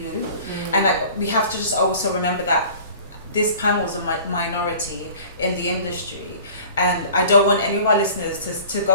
you, and like, we have to just also remember that this panel is a minority in the industry, and I don't want any of our listeners to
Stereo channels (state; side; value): inverted; both; correlation -0.46